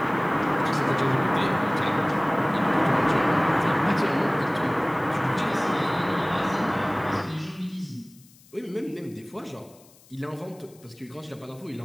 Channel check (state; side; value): noise; left; hiss, 27 dB below the sound